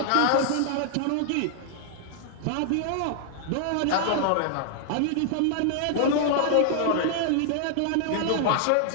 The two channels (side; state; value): both; different; correlation -0.01